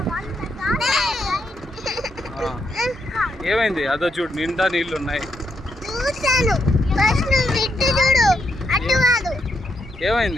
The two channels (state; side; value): normal; both; correlation 0.79